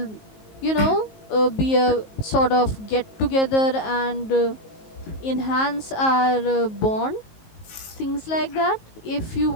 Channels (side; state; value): right; late; 19 ms